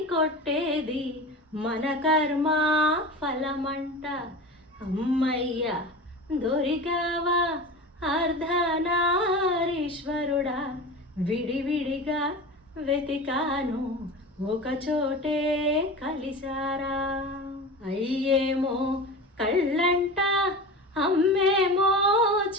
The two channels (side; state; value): both; normal; correlation 0.31